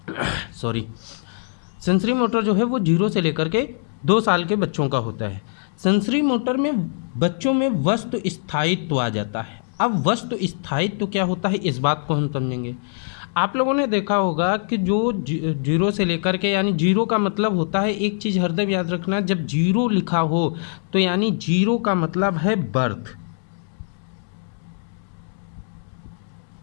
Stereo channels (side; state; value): right; silent; digital silence